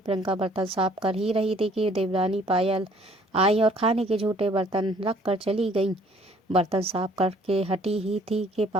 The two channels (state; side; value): normal; both; correlation 0.59